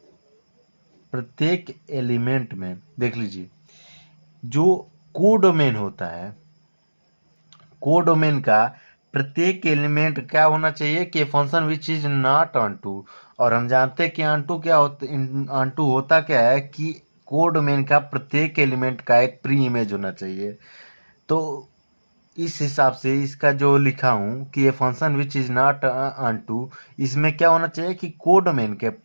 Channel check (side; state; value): both; inverted; correlation -1.00